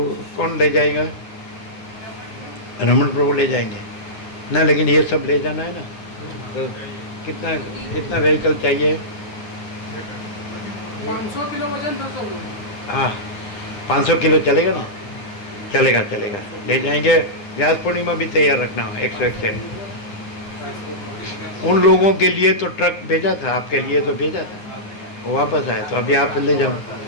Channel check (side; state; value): right; late; 9.9 ms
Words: कौन ले जाएगा? रमन प्रभु ले जाएंगे ना, लेकिन ये सब ले जाना है ना। तो कितना व्हीकल चाहिए? 500 किलो वजन था सब लोग। हाँ 500 किलो चलेगा ना? चलेगा, ले जाएंगे। व्यास पूर्णिमा भी तैयार रखना हो 101। उन लोगों के लिए तो ट्रक भेजा था, आपके लिए तो भेजा था, वो वापस आए। तो अभी आप ले जाओ,